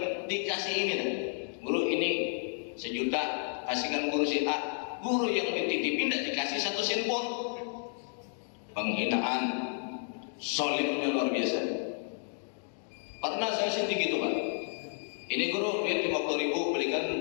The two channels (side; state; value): right; silent; 57 dB below the other